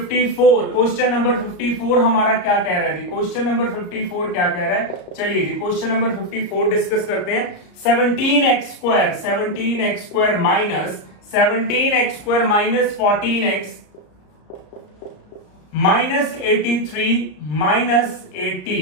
हमारा क्या कह रहा है जी, क्वेश्चन नंबर 54 क्या कह रहा है, चलिए जी क्वेश्चन नंबर 54 डिस्कस करते हैं। 17x square minus 17x minus 14x minus 83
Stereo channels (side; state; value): right; late; 34 ms